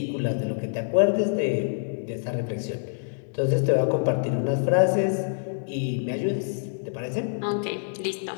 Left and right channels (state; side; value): silent; right; digital silence